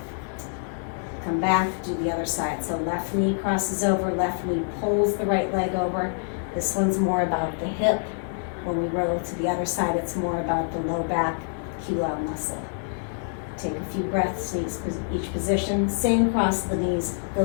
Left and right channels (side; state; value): right; silent; 61 dB below the other